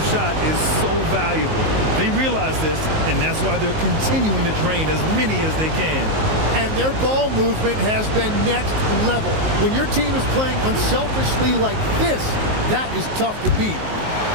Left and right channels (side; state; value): left; late; 19 ms